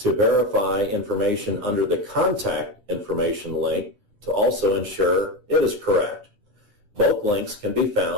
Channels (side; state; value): left; late; 9.6 ms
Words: verify information under the contact information link to also ensure it is correct. Both links can be